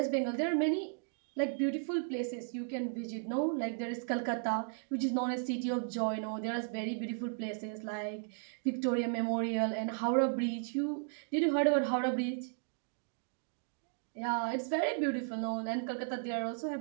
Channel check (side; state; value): left; silent; digital silence